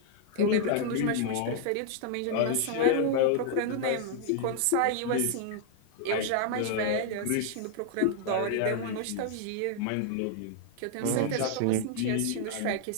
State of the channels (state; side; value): different; both; correlation 0.00